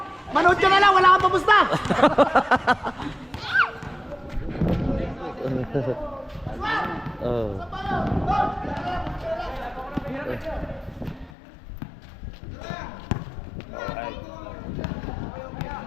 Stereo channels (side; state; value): right; drops out; at 11.3 s